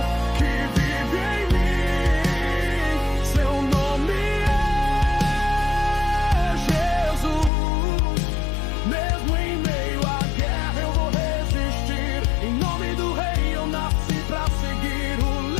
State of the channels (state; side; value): drops out; right; at 7.5 s